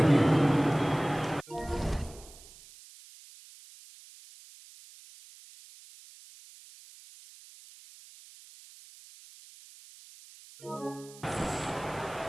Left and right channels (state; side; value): noise; right; hiss, 21 dB below the sound